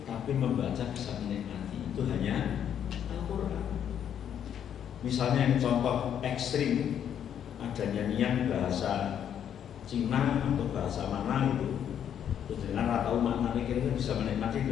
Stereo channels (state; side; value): quieter; right; 9.2 dB